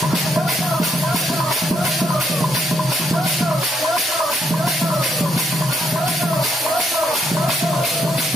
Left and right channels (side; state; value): both; normal; correlation 0.74